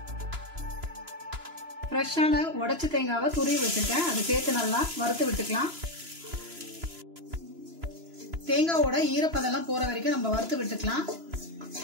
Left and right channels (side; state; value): left; late; 2.9 ms